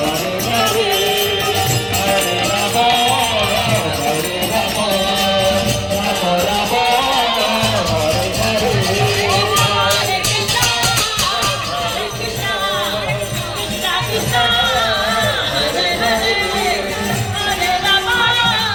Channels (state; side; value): identical; both; correlation 1.00